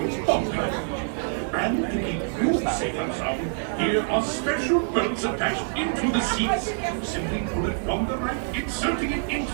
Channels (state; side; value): silent; left; 61 dB below the other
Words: popular. And to keep you safe and sound, here are special belts attached into the seats. Simply pull it from the right, inserting it